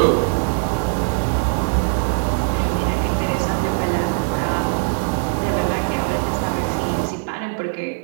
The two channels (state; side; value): silent; left; 59 dB below the other